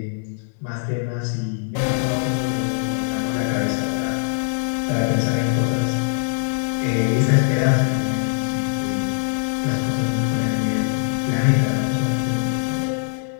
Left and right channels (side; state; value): right; silent; digital silence